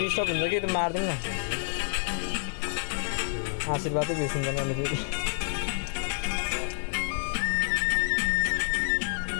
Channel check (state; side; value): silent; right; 59 dB below the other